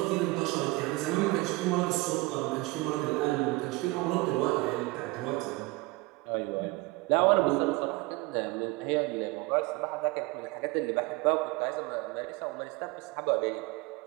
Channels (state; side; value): quieter; left; 22.7 dB